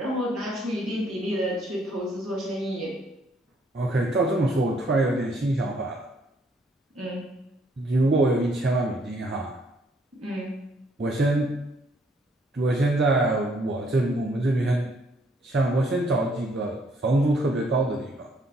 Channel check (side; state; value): both; normal; correlation 0.67